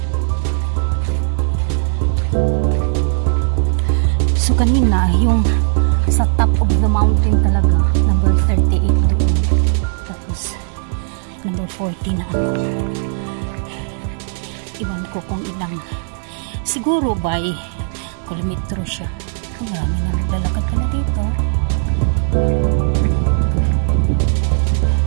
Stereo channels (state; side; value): silent; left; 68 dB below the other